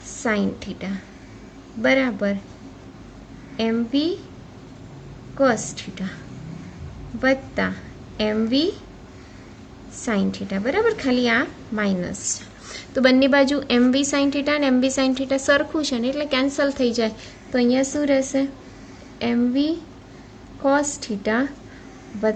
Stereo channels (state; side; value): identical; both; correlation 1.00